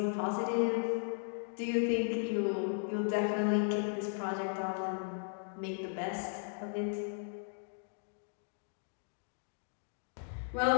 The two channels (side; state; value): right; silent; digital silence